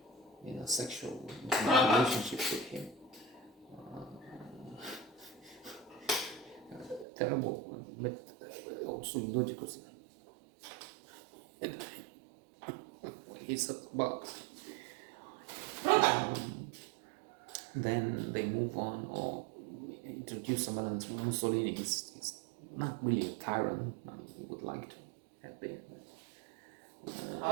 in a sexual relationship with him. Terrible, but also logical. He's about. Then they move on or introduce someone else. Mussolini is not really a tyrant. I mean, he would like to have been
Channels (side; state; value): left; drops out; at 7.1 s